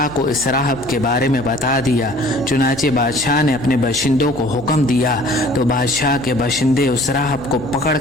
को इस राहब के बारे में बता दिया। चुनांचे बादशाह ने अपने बाशिंदों को हुक्म दिया तो बादशाह के बाशिंदे उस राहब को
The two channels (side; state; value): left; noise; hum, 19 dB below the sound